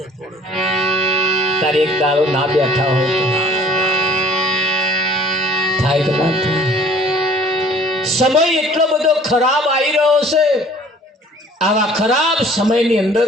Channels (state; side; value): normal; both; correlation 0.52